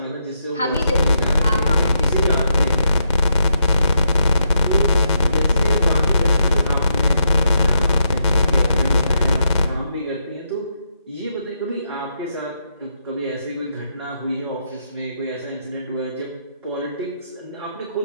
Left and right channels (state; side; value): inverted; both; correlation -0.80